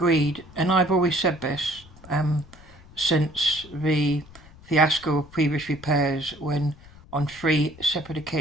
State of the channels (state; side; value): noise; left; rumble, 22 dB below the sound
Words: and I've always said this since the fiasco of previous repairs, when on 3 separate